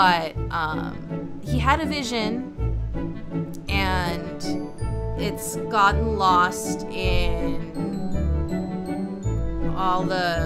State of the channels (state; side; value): identical; both; correlation 1.00